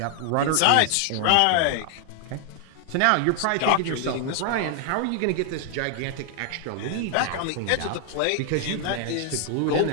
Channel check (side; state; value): both; different; correlation 0.00